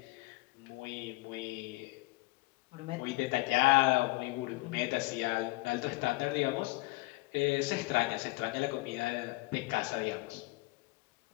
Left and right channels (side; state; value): right; quieter; 23.0 dB